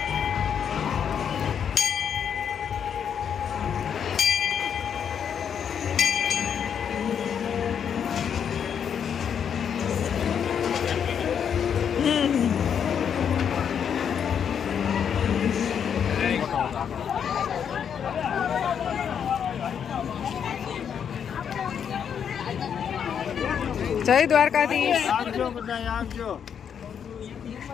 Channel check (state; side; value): quieter; right; 7.9 dB